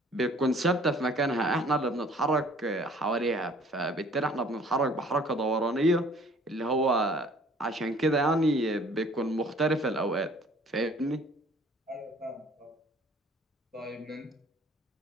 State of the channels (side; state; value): both; normal; correlation 0.54